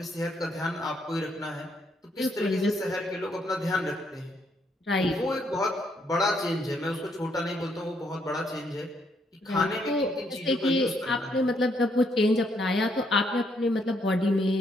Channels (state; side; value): normal; both; correlation 0.73